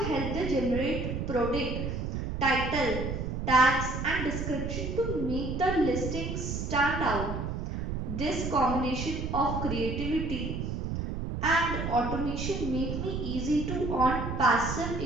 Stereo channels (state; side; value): noise; right; rumble, 3 dB below the sound